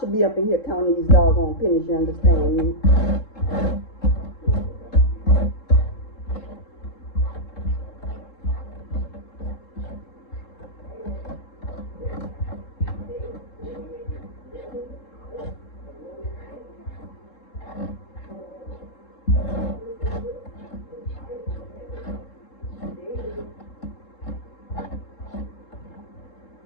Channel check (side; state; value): right; late; 3.7 ms